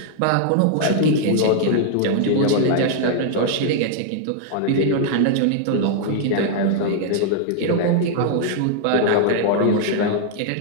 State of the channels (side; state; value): both; different; correlation -0.01